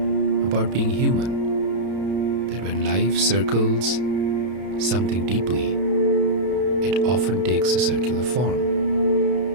about being human, that when life circles something deeply, it often takes a circular form.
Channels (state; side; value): late; left; 32 ms